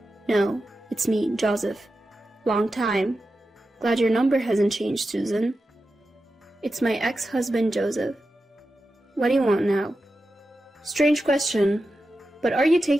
"No, it's me, Joseph. Long time. Glad your number hasn't changed, Susan." "It's my ex-husband, Joseph. What do you want now?" "Strange question, but are you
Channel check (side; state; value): both; normal; correlation 0.91